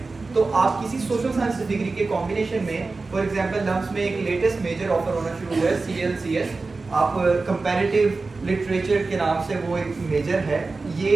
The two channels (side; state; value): left; quieter; 3.8 dB